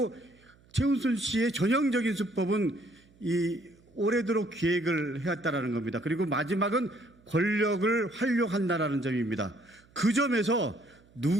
최은순 씨의 전형적인 수법은 이 오래도록 기획을 해왔다라는 겁니다. 그리고 마지막은 권력을 활용한다라는 점입니다. 그 점에서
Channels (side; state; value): right; noise; hum, 29 dB below the sound